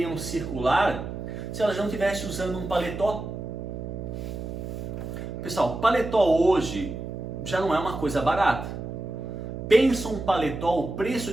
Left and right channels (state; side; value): noise; right; hum, 7 dB below the sound